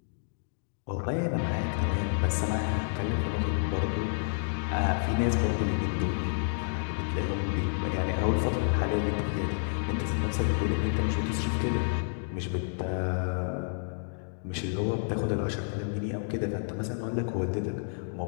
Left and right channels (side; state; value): right; silent; digital silence